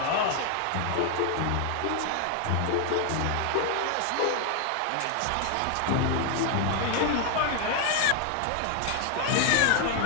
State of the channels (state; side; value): different; both; correlation 0.01